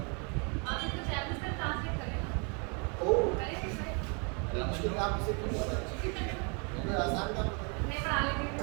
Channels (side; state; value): left; quieter; 35.3 dB